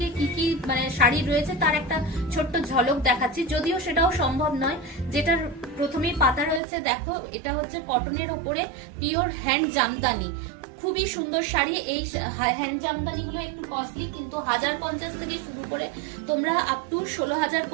কি কি শাড়ি রয়েছে তার একটা ছোট্ট ঝলক দেখাচ্ছি, যদিও সেটাও সম্ভব নয়। যেটার প্রথমেই পাতা রয়েছে দেখো, এটা হচ্ছে কটনের ওপরে পিওর হ্যান্ড জামদানি। খুবই সুন্দর শাড়ি। এই হ্যান্ড জামদানি গুলো একটু কস্টলি, কিন্তু 1050 থেকে শুরু করে তোমরা আপ টু 16,000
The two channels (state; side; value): drops out; left; at 6.6 s